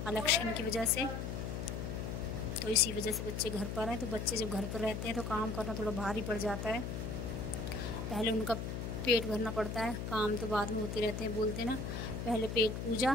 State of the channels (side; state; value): left; noise; hum, 4 dB below the sound